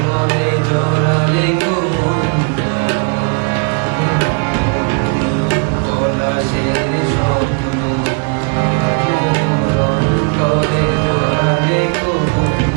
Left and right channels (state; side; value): quieter; left; 37.3 dB